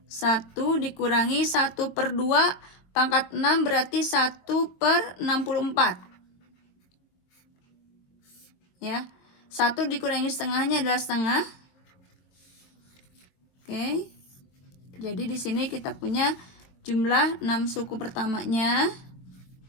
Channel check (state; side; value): late; right; 22 ms